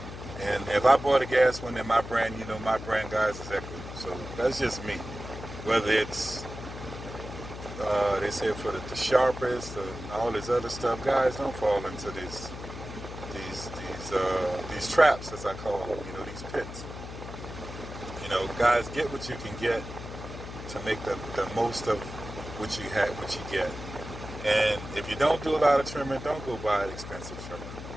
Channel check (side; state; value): left; noise; hum, 10 dB below the sound